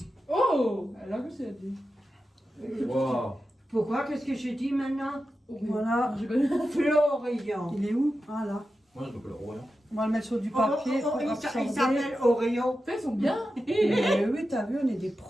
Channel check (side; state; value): both; normal; correlation 0.91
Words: Oh, elle a que c'est dit. Wow. Pourquoi? Qu'est-ce que j'ai dit maintenant? Voilà. Florian. Il est où? Ah là. Moi, je m'appelle Royan. On va le mettre sur du papier. Il s'appelle Orion. Ils sont bien. Oui, t'as vu, on est des